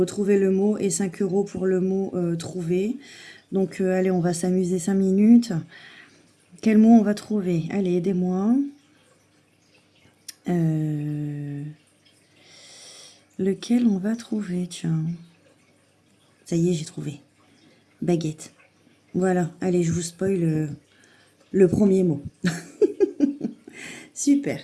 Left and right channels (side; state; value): both; identical; correlation 1.00